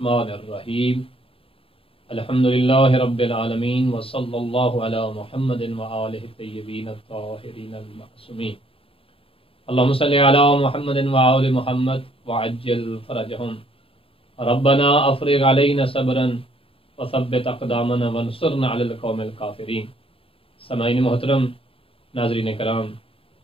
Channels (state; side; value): late; right; 0.27 ms